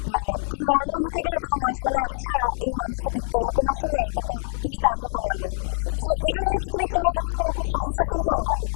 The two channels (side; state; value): right; silent; digital silence